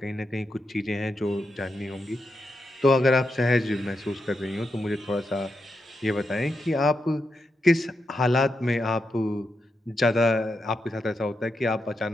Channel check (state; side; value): normal; both; correlation 0.85